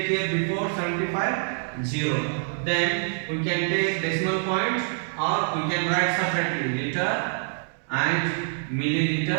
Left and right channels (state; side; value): silent; left; 61 dB below the other